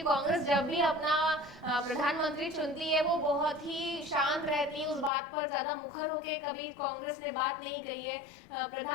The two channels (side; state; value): right; drops out; at 5.1 s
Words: कांग्रेस जब भी अपना प्रधानमंत्री चुनती है वो बहुत ही शांत रहती है, उस बात पर ज्यादा मुखर होके कभी कांग्रेस ने बात नहीं कही है।